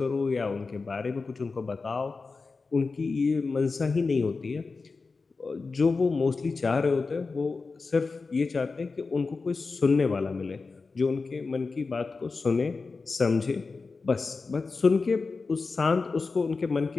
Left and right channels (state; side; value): quieter; right; 4.2 dB